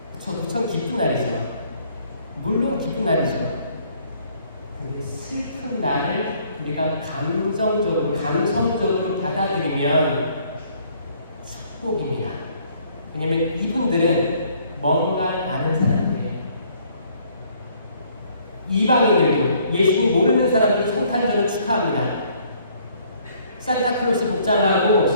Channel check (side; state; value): both; inverted; correlation -0.62